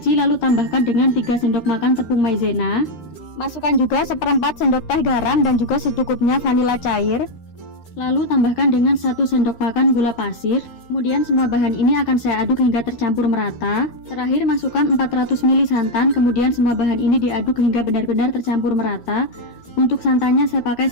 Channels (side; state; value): right; late; 13 ms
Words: lalu tambahkan dengan 3 sendok makan tepung maizena. Masukkan juga seperempat sendok teh garam dan juga secukupnya vanila cair. Lalu tambahkan dengan 1 sendok makan gula pasir. Kemudian semua bahan ini akan saya aduk hingga tercampur merata. Terakhir masukkan 400 ml santan. Kemudian semua bahan ini diaduk hingga benar-benar tercampur merata. Untuk santannya saya pakai